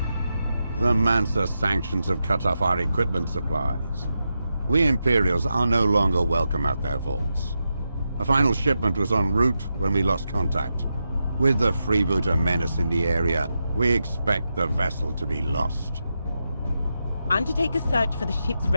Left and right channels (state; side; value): inverted; both; correlation -0.88